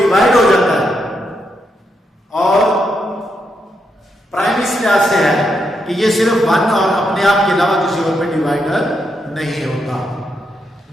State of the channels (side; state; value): both; normal; correlation 0.81